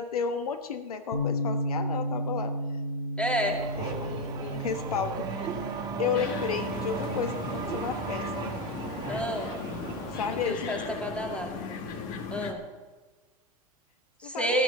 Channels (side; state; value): both; normal; correlation 0.08